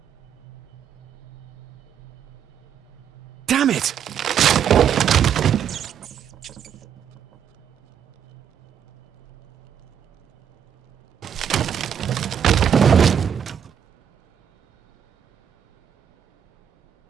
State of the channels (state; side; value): quieter; left; 8.6 dB